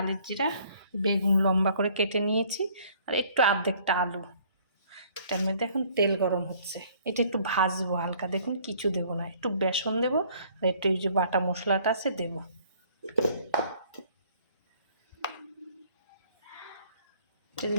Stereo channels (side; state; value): both; inverted; correlation -0.58